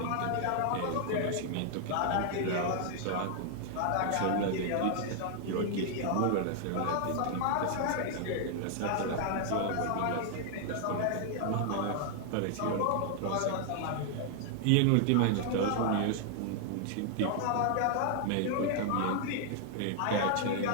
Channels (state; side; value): different; both; correlation 0.00